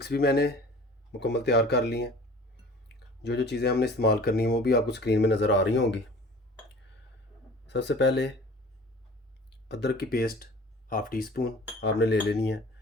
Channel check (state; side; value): normal; both; correlation 0.44